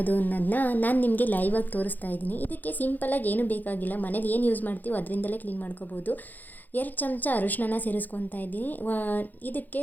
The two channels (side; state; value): right; late; 0.084 ms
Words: ಅನ್ನೋದನ್ನ ನಾನು ನಿಮಗೆ ಲೈವ್ ಆಗಿ ತೋರಿಸ್ತಾ ಇದ್ದೀನಿ. ಇದಕ್ಕೆ ಸಿಂಪಲಾಗಿ ಏನು ಬೇಕಾಗಿಲ್ಲ, ಮನೇಲಿ ಏನು ಯೂಸ್ ಮಾಡ್ತೀವೋ ಅದರಿಂದಲೇ ಕ್ಲೀನ್ ಮಾಡ್ಕೋಬೋದು. 2 ಚಮಚ ಅರಿಶಿನ ಸೇರಿಸ್ಕೊತಾ ಇದ್ದೀನಿ. ಇದಕ್ಕೆ